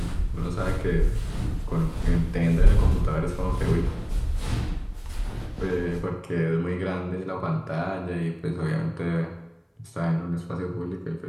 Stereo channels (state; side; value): identical; both; correlation 1.00